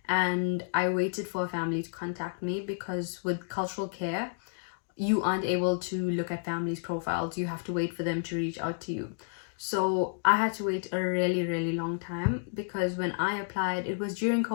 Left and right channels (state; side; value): silent; right; digital silence